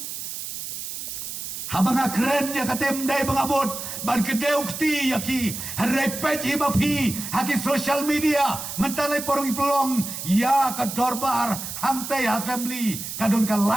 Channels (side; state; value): right; noise; hiss, 7 dB below the sound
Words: Habang keren ya katem dai bangabot. Ban kedeu kti ya ki. Repet iba pi. Haki social media. Mentalai porong pelong. Ya ke dorbar. Hamte assembly. Kadon ka